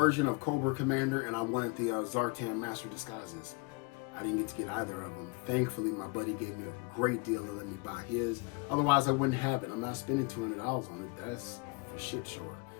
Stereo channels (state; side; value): quieter; right; 28.4 dB